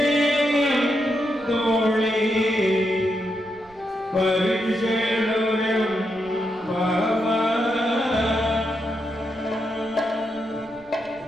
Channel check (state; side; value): noise; right; rumble, 27 dB below the sound